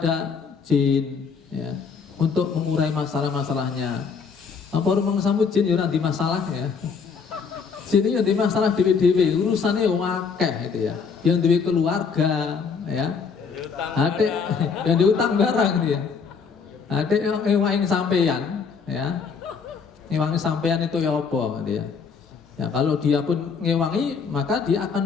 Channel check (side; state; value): right; quieter; 5.7 dB